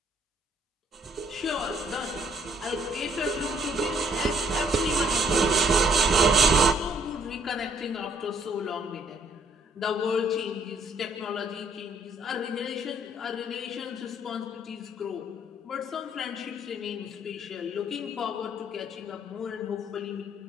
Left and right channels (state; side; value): normal; both; correlation 0.65